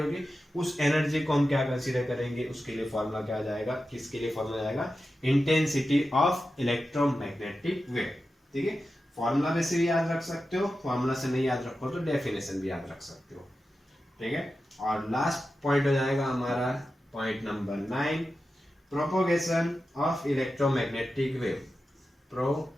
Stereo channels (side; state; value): both; normal; correlation 0.92